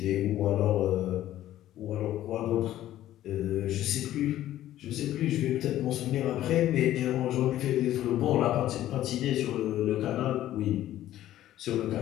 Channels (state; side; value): quieter; right; 13.3 dB